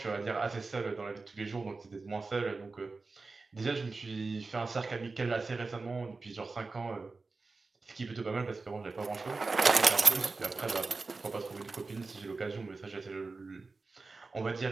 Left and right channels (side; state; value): left; quieter; 3.9 dB